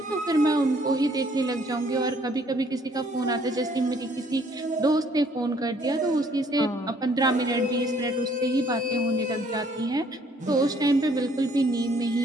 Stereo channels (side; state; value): both; normal; correlation 0.63